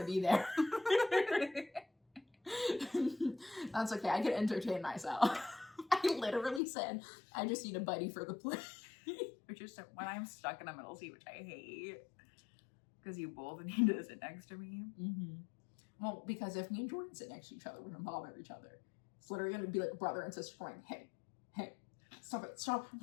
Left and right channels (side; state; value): right; drops out; at 6.6 s